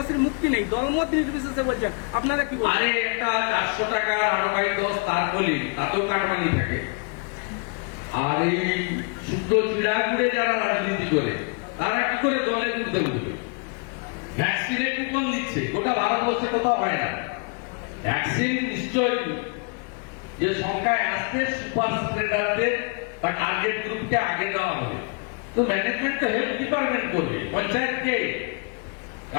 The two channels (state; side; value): quieter; right; 35.5 dB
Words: মুক্তি নেই, দলমত নির্বিশেষে বলছেন, আপনারা কি বলেন? আরে একটা 400 টাকার আরবাই 10 তার বলি, তাতেও কাটমানি থাকে। আর এই শুদ্ধ চিড়া ঘুরে যারা রাজনীতি করে, তারা কি করে দলে ঘুরতে ঘুরবে? ভ্যাকসিনের কুপন দিচ্ছে, গোটা ভারতবর্ষে কোথাও হয় না। ভ্যাকসিন নিশ্চয়ই যে সংখ্যায় আসছে, সুপার স্প্রেডারদের বা টার্গেট গ্রুপকে আগে দেওয়া হবে। তো ম্যানেজমেন্ট তো হেলথ ডিপার্টমেন্ট করবে, পঞ্চায়েতকে।